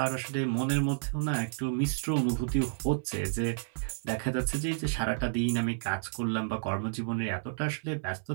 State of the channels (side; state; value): left; silent; 57 dB below the other